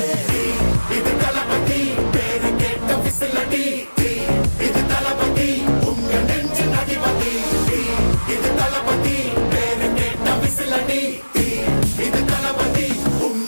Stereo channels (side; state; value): both; inverted; correlation -1.00